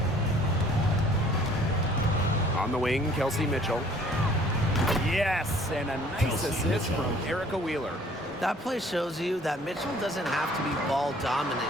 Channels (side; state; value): both; normal; correlation 0.56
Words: On the wing, Kelsey Mitchell. Yes, and a nice assist from Erica Wheeler. That play shows you that Mitchell doesn't have to be ball dominant